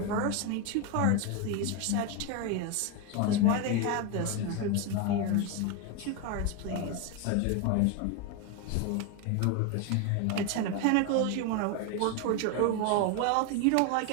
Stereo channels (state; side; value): different; both; correlation 0.02